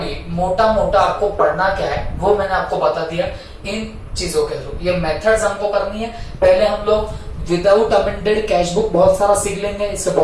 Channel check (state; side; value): identical; both; correlation 1.00